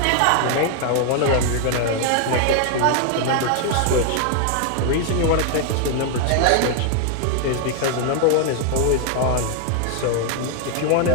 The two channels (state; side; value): different; both; correlation 0.00